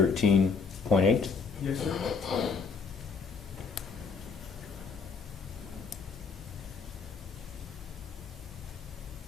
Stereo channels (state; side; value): quieter; right; 5.3 dB